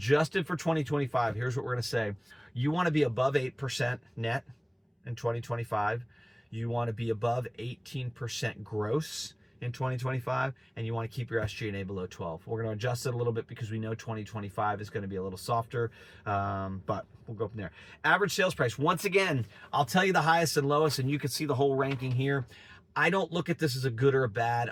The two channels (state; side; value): identical; both; correlation 1.00